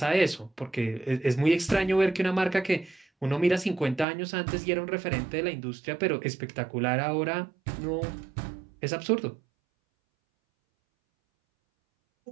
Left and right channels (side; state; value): left; drops out; at 4.0 s